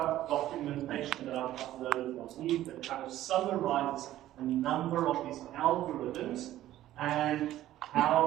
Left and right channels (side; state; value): left; quieter; 13.8 dB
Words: documentation that I've uploaded on Eve that kind of summarizes a number of these algorithms and